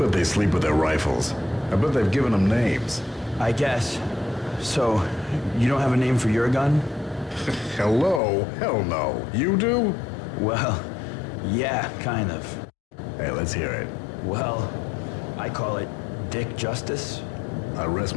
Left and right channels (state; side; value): drops out; right; at 8.2 s